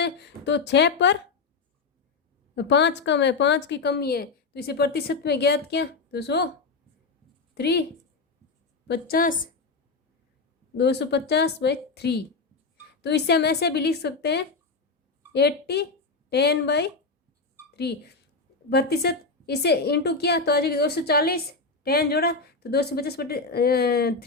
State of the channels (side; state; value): right; quieter; 4.1 dB